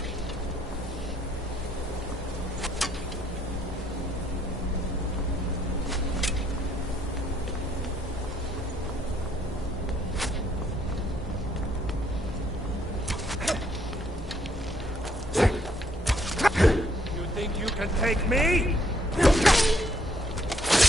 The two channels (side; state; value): both; normal; correlation 0.68